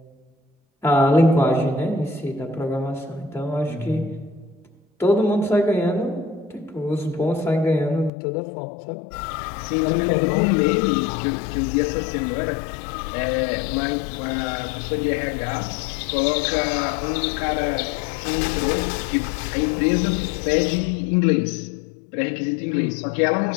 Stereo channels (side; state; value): right; drops out; at 8.1 s